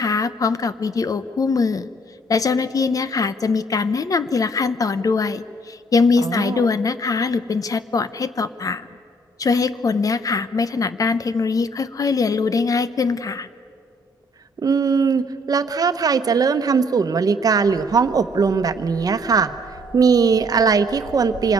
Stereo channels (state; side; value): normal; both; correlation 0.63